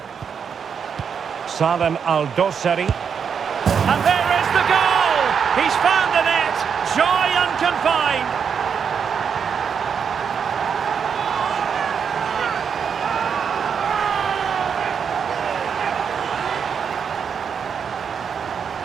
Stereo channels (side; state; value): left; quieter; 6.9 dB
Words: Salem Al-Dosari. And there is the goal! He's found the net! Joy unconfined!